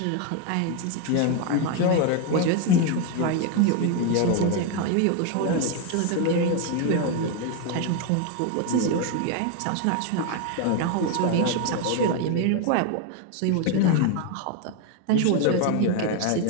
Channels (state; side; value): different; both; correlation 0.01